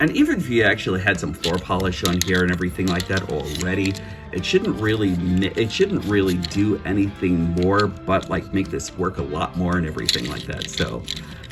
even if you actually had some floor polish on here and everything like that already, it shouldn't really do anything more but like make this work a lot more and everything like that. So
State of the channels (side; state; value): both; identical; correlation 1.00